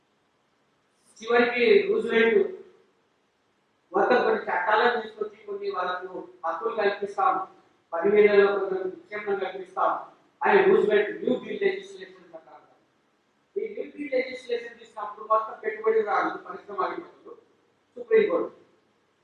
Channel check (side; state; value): both; identical; correlation 1.00